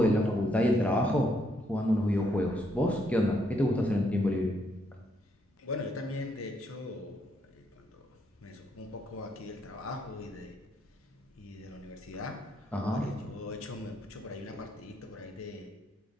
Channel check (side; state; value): both; normal; correlation 0.74